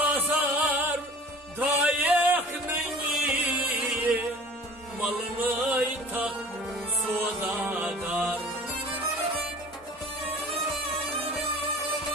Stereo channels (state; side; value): normal; both; correlation 0.44